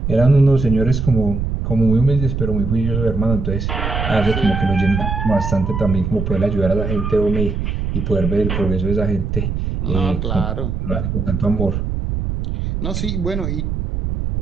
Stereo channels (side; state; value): right; noise; rumble, 2 dB below the sound